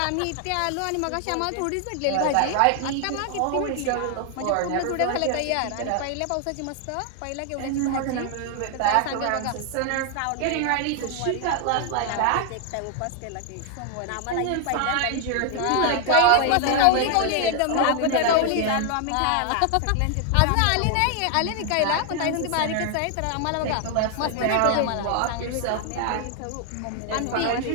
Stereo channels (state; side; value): different; both; correlation 0.00